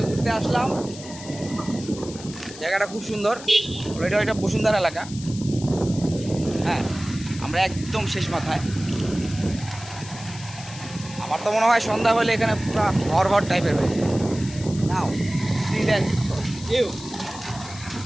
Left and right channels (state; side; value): noise; left; hiss, 15 dB below the sound